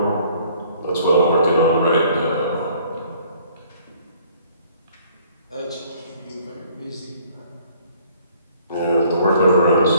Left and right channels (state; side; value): inverted; both; correlation -0.58